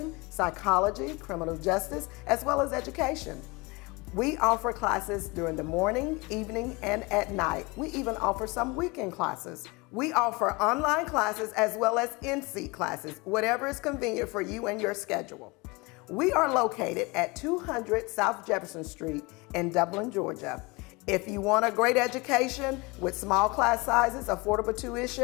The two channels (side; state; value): right; quieter; 25.8 dB